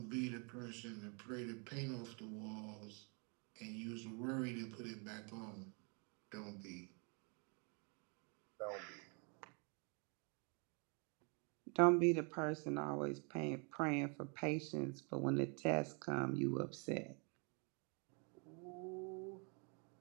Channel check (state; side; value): quieter; left; 35.8 dB